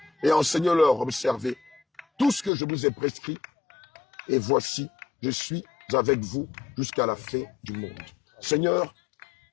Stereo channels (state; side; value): drops out; right; at 2.5 s